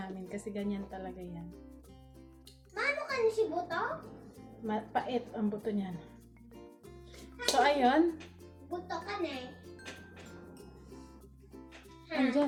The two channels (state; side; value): identical; both; correlation 1.00